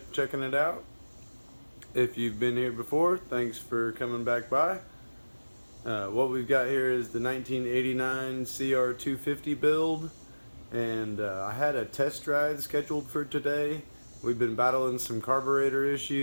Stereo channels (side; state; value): both; inverted; correlation -1.00